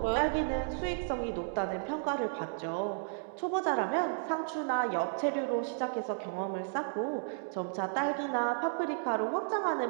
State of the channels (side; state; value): left; silent; digital silence